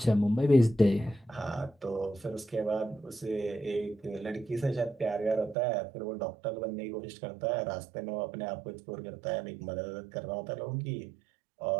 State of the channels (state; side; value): drops out; left; at 5.6 s